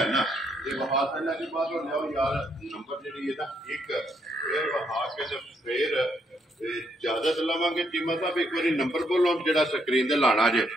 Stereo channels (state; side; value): normal; both; correlation 0.74